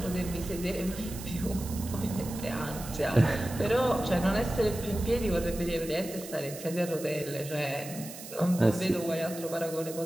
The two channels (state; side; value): noise; right; hiss, 13 dB below the sound